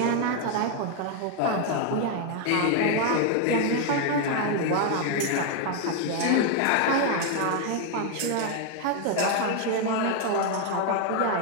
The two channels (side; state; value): both; different; correlation 0.01